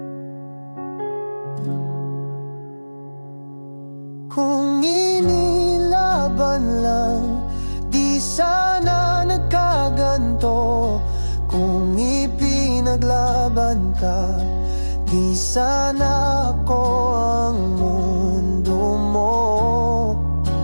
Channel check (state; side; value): inverted; both; correlation -1.00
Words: kung inilaban lang, di sana nagkaganto. Kung ipinaglaban ka, di sana ako ang mundo mo.